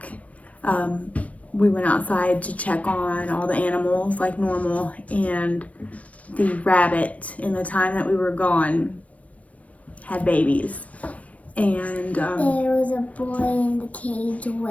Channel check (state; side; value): late; right; 0.066 ms